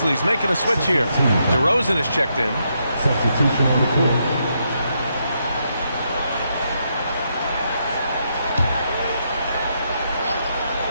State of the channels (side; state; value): both; inverted; correlation -0.79